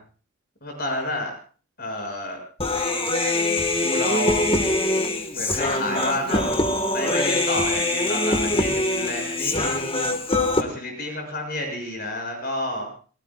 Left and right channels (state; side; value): normal; both; correlation 0.20